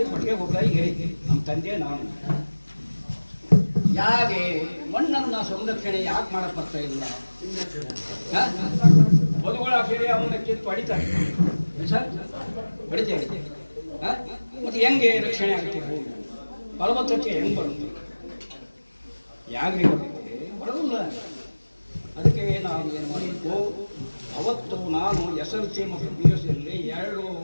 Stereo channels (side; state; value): both; inverted; correlation -1.00